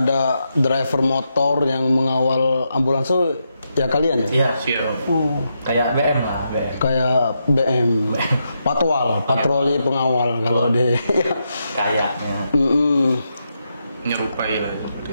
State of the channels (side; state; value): both; inverted; correlation -0.83